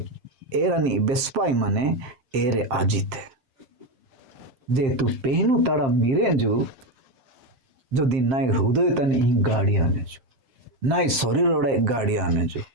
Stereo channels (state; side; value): late; left; 7.5 ms